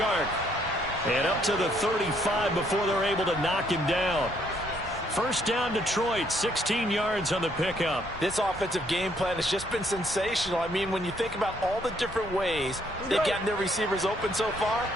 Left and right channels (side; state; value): both; normal; correlation 0.69